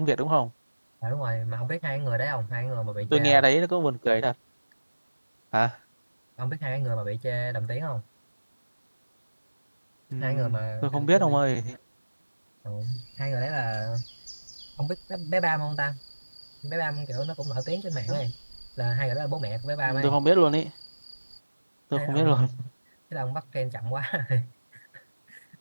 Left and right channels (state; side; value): inverted; both; correlation -1.00